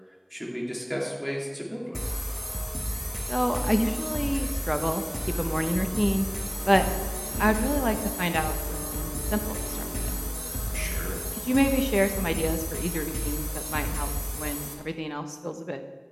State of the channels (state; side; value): identical; both; correlation 1.00